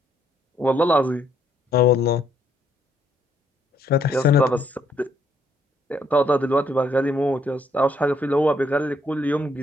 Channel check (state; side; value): normal; both; correlation 0.70